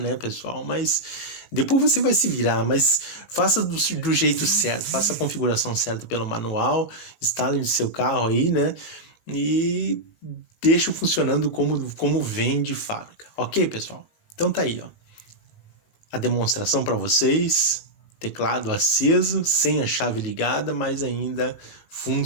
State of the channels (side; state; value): right; late; 19 ms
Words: pessoal? Mas depois você vai se virar, mas faça do jeito certo, faça a configuração certa pelo manual, instale no seu carro aí, né? E deixe funcionando como vem de fábrica. Ok, pessoal? Então tá aí, ó. A demonstração para vocês. Teclado aceso, sem a chave ligada, mas ainda